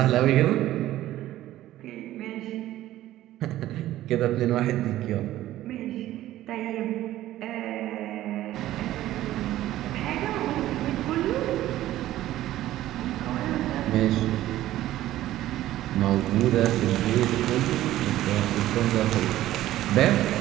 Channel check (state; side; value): quieter; left; 14.4 dB